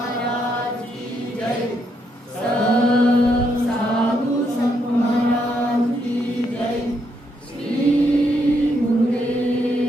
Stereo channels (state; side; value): normal; both; correlation 0.77